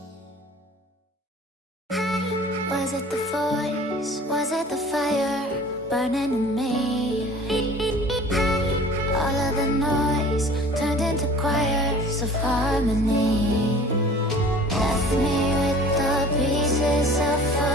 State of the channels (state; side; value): normal; both; correlation 0.45